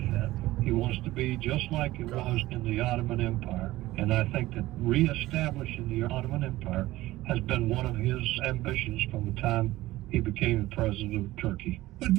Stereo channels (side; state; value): left; quieter; 17.1 dB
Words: He wants to be just like it was in the Ottoman Empire. And I think that reestablishing the Ottoman Empire has been one of his ambitions from the time he became the president of Turkey. But